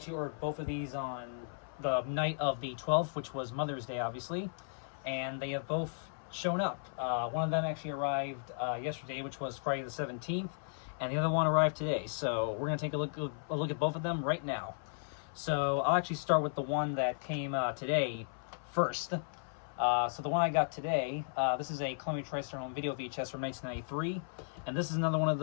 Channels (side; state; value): right; silent; 54 dB below the other